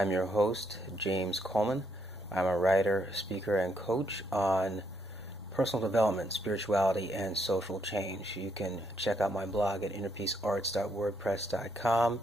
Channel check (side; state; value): both; normal; correlation 0.74